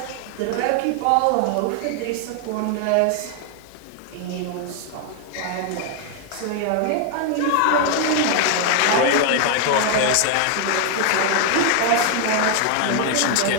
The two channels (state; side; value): different; both; correlation 0.00